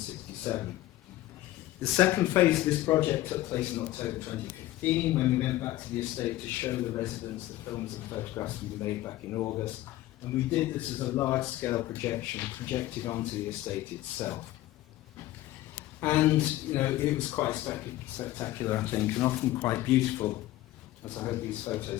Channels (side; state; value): right; quieter; 15.6 dB